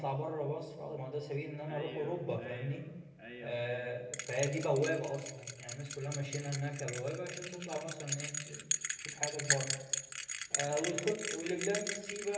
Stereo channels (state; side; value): identical; both; correlation 1.00